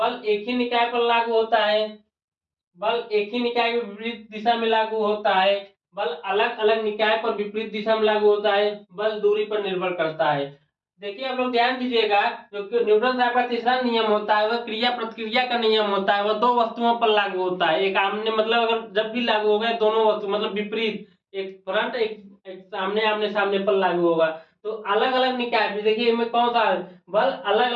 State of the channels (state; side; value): identical; both; correlation 1.00